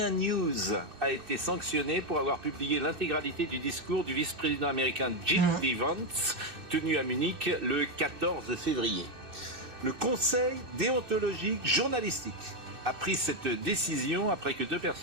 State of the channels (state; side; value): late; left; 2.6 ms